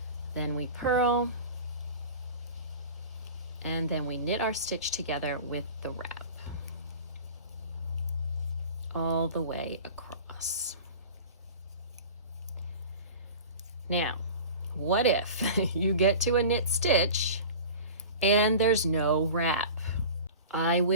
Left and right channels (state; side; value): inverted; both; correlation -0.36